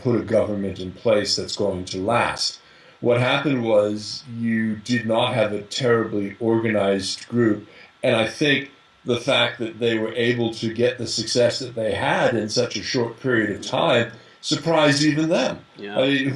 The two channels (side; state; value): both; identical; correlation 1.00